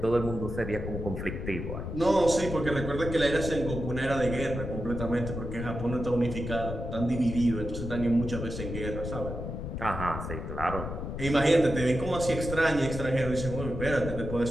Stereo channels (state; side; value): noise; left; rumble, 6 dB below the sound